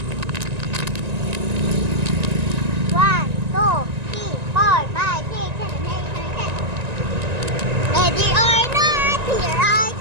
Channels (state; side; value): late; left; 1.9 ms